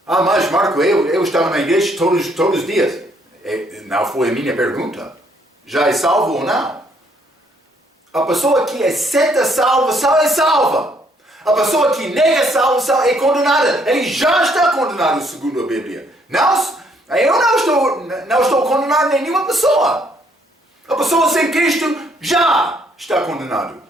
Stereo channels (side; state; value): both; normal; correlation 0.68